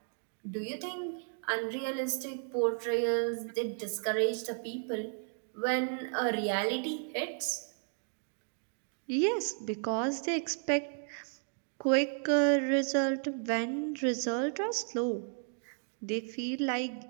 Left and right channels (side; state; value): left; silent; 55 dB below the other